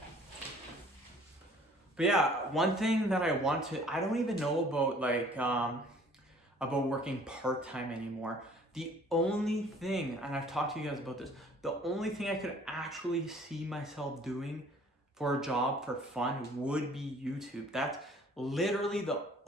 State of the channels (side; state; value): both; normal; correlation 0.54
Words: But yeah, one thing that I don't even know about about working part-time anymore. The only thing, and I've talked to you guys about this, the only thing I could actually see myself doing for a job for fun would be YouTube. That's literally the